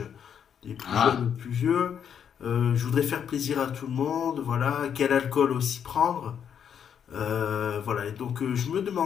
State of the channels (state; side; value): quieter; right; 8.2 dB